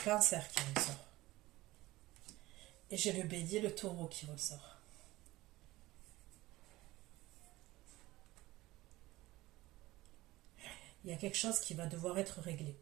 qui ressort. Et j'ai le bélier, le taureau qui ressort. Il y a quelque chose qui va devoir être réglé.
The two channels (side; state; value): left; quieter; 18.2 dB